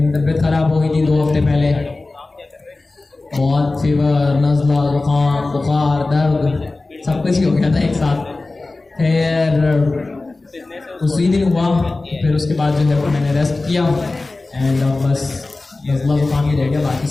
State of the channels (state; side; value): quieter; right; 3.3 dB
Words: तबीयत ख़राब हो गई थी 2 हफ्ते पहले, बहुत फीवर, नज़ला, ज़ुकाम, बुखार, दर्द, सब कुछ ही हो गया था एक साथ। फिर उसी दिन हुआ, फिर उसके बाद जो है वो मैंने रेस्ट किया एंड अब बस नज़ला ज़ुकाम ही रह गया, बाकी